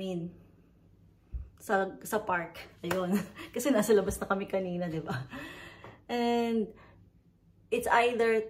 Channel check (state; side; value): identical; both; correlation 1.00